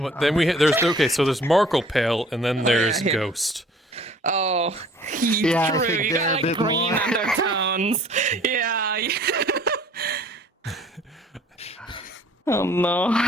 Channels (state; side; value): normal; both; correlation 0.53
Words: then there's okay. So there's Markl pale, and then there's yeah. Ghost. Oh, Yeah, I true. think You they're got a like bit green more. undertones. Yeah. Oh no.